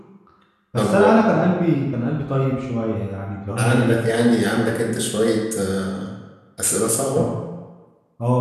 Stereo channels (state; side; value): identical; both; correlation 1.00